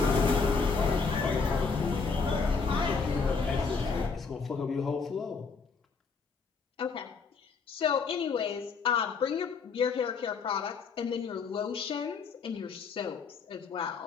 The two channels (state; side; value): quieter; right; 5.0 dB